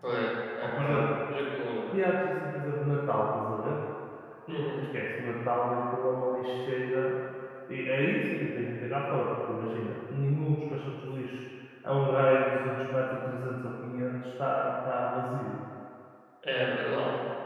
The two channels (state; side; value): identical; both; correlation 1.00